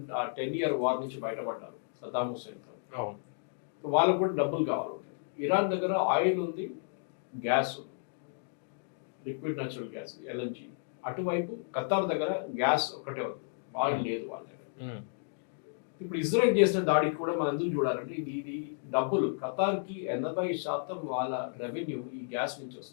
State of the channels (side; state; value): right; silent; digital silence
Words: ఇయర్ వార్ నుంచి బయటపడ్డారు సదాం హుస్సేన్తో. వాళ్ళకు కూడా డబ్బులు కావాలి. ఇరాన్ దగ్గర ఆయిల్ ఉంది, గ్యాస్ ఉంది, లిక్విడ్ న్యాచురల్ గ్యాస్ ఎల్ఎన్జీ. అటువైపు ఖతార్ దగ్గర గ్యాస్ ఒకటే ఉంది, ఆయిల్ లేదు వాళ్ళ దగ్గర. ఇప్పుడు ఇజ్రాయెల్ చేసిన దాడికి కూడా మనం ఎందుకు చూడాలంటే, ఇది డబ్బులు ఖతార్కి 80% వాళ్ళ రెవెన్యూ ఈ గ్యాస్ నుంచి